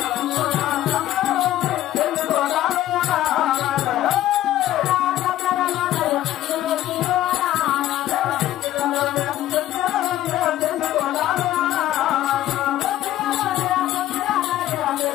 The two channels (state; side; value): quieter; right; 13.7 dB